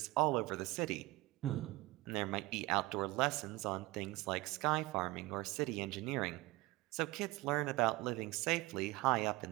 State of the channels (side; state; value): left; quieter; 20.7 dB